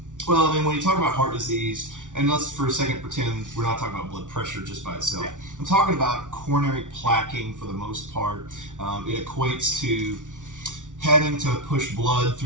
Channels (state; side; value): late; left; 0.87 ms